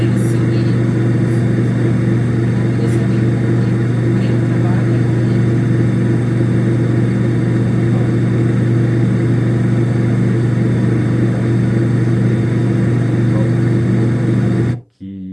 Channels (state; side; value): identical; both; correlation 1.00